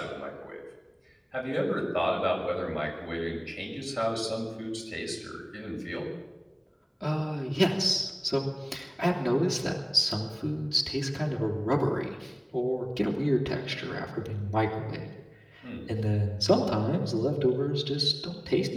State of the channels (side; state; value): both; identical; correlation 1.00